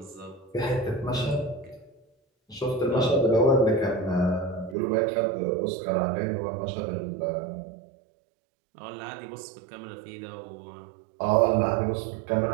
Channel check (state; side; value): drops out; left; at 4.8 s